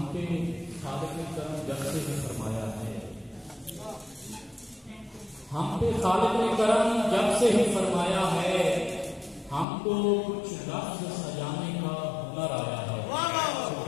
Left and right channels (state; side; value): drops out; right; at 9.7 s